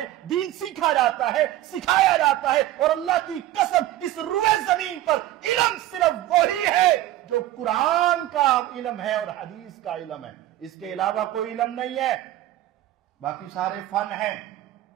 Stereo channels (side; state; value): left; quieter; 14.3 dB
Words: دین سیکھا جاتا ہے, سکھایا جاتا ہے. اور اللہ کی قسم اس روئے زمین پر علم صرف وہی ہے جو قرآن کا علم ہے اور حدیث کا علم ہے. اس کے علاوہ کوئی علم نہیں ہے. باقی سارے فن ہیں.